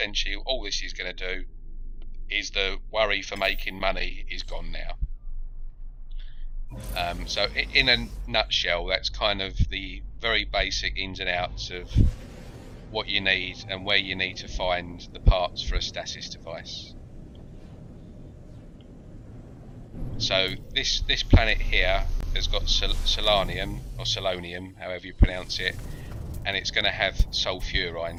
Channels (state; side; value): identical; both; correlation 1.00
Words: all this is going to do is the worry for making money is gone now. So in a nutshell, that's kind of the very basic ins and outs of what you need and where you need to find the parts for a stasis device. So this planet here has got selenium, or selonium, however you pronounce it, and it's going to have